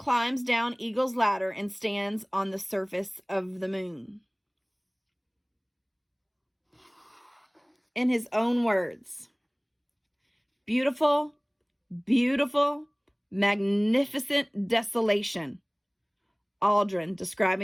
down Eagle's ladder and stands on the surface of the moon. In his own words, beautiful, beautiful, magnificent desolation. Aldrin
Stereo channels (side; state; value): both; identical; correlation 1.00